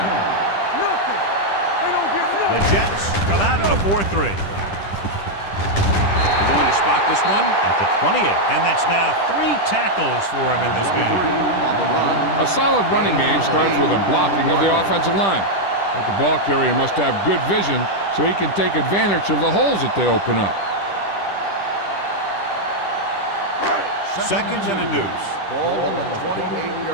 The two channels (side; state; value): right; late; 10 ms